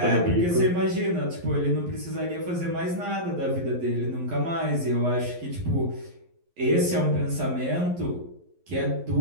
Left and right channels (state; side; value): late; left; 11 ms